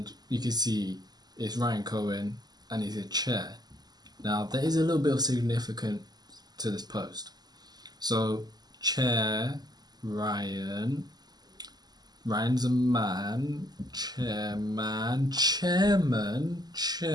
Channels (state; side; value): late; left; 0.20 ms